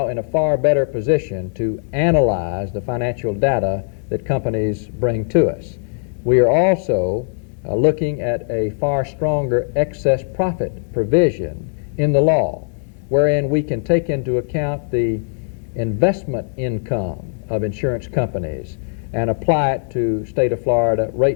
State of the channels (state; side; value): silent; right; 66 dB below the other